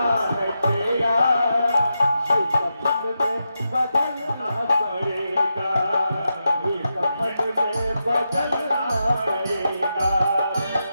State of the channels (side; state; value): both; inverted; correlation -0.87